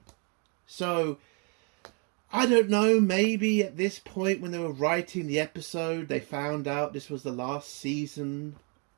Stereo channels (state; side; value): quieter; left; 35.4 dB